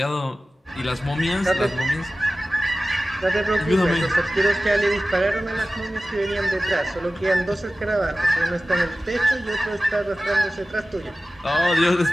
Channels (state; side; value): normal; both; correlation 0.96